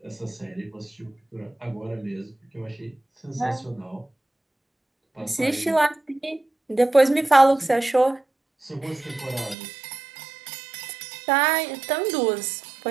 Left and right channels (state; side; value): drops out; left; at 9.6 s